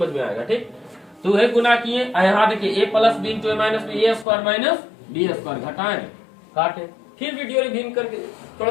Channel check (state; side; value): drops out; right; at 4.2 s